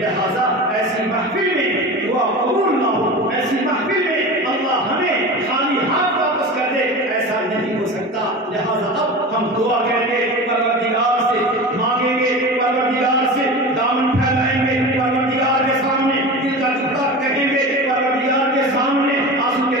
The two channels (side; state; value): both; normal; correlation 0.30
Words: لہذا ایسی محفل میں دعا قبول نہ ہو، ایسی محفل میں اللہ ہمیں خالی ہاتھ واپس کر دے، ایسا نہیں ہو سکتا۔ لہذا اب ہم دعا کریں گے، پروردگار سے مانگیں گے، پروردگار سے دامن پھیلائیں گے، پروردگار کے سامنے دل کا ٹکڑا کہیں گے، پروردگار کے سامنے آنسو کے